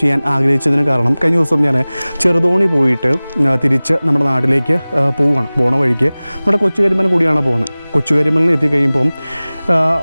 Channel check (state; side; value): inverted; both; correlation -0.99